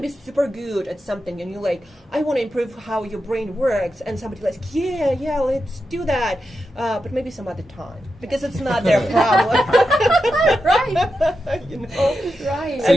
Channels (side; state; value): both; normal; correlation 0.89